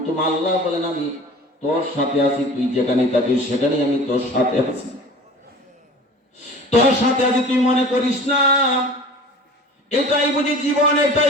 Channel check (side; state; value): both; normal; correlation 0.41